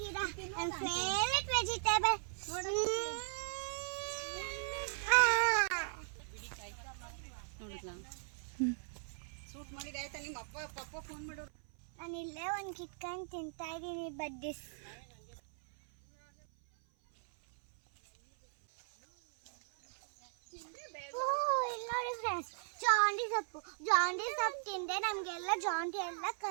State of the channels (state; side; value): silent; left; 52 dB below the other